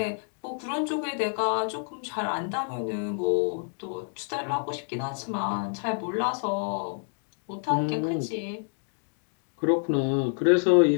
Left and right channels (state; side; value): silent; right; 59 dB below the other